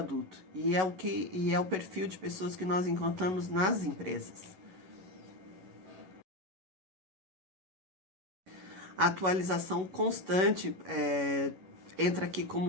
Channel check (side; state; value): left; late; 11 ms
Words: E é o perfil de pessoas que nós encontramos nas empresas. A atualização constante entra aqui